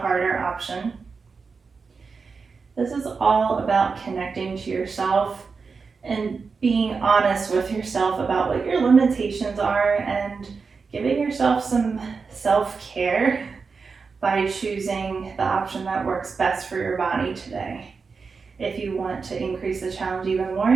option. This is all about connecting to yourself and being honest with yourself about what your limitations are and giving yourself some self-care by choosing the option that works best for your body today. If you want to increase the challenge even more,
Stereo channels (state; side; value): quieter; left; 4.9 dB